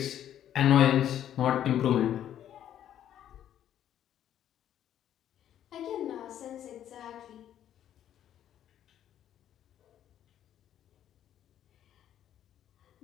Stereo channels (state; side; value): quieter; right; 10.8 dB